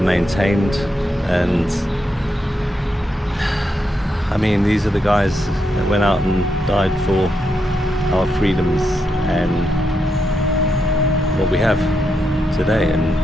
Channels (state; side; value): normal; both; correlation 0.83